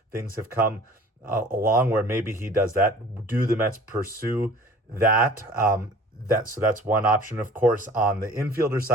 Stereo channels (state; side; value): normal; both; correlation 0.47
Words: things have come along where maybe he does that. Do the Mets pursue that? So that's one option. Of course, on the infielder